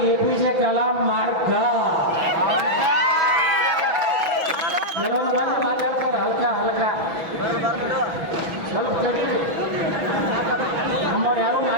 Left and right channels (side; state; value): left; late; 6.1 ms